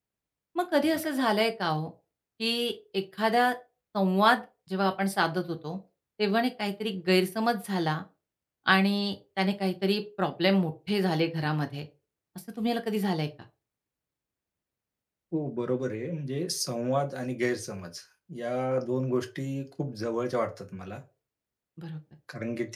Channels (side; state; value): both; identical; correlation 1.00